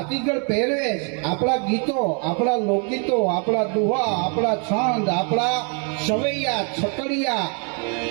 પહેરવેશ, આપણા ગીતો, આપણા લોકગીતો, આપણા દુહા, આપણા છંદ, આપણા સવૈયા, છકડિયા,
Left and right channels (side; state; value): left; quieter; 38.7 dB